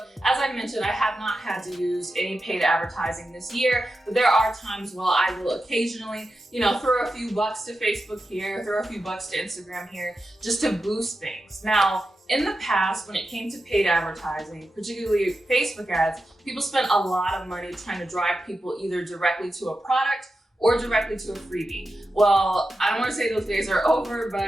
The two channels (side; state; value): both; normal; correlation 0.90